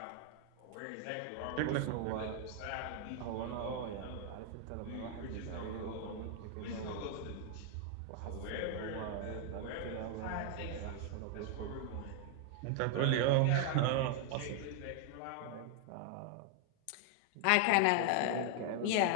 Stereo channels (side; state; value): both; different; correlation 0.00